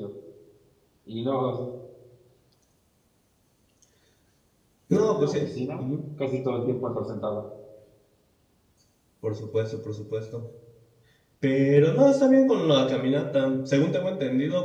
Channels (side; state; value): both; identical; correlation 1.00